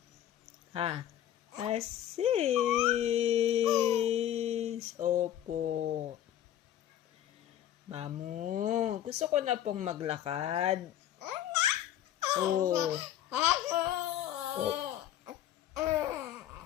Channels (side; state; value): right; quieter; 11.5 dB